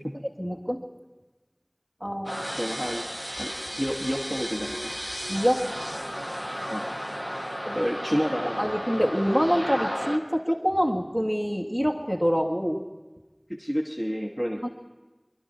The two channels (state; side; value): identical; both; correlation 1.00